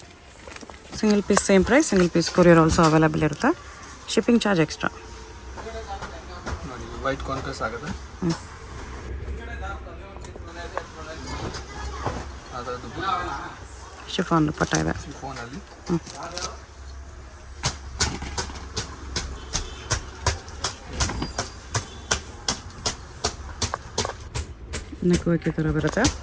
Single piece same price, single piece courier also available ಇರುತ್ತೆ. Shipping charge extra ನೋಡಿ. White contrast ಆಗುತ್ತೆ. ಅದರದ್ದು ಶಿಫಾನ್ ದುಪ್ಪಟ್ಟ ಇದೆ. ಫೋನಲ್ಲಿ ನೆಕ್ ವರ್ಕ್ ಈ ಥರ ಬರುತ್ತೆ.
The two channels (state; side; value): identical; both; correlation 1.00